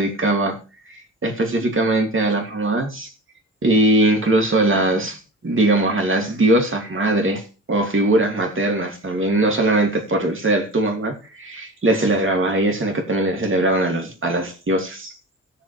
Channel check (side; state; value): both; normal; correlation 0.32